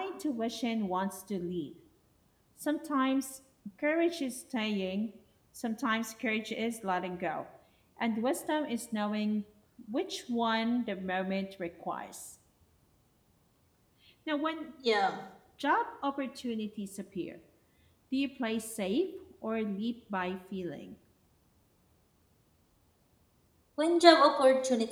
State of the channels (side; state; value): both; identical; correlation 1.00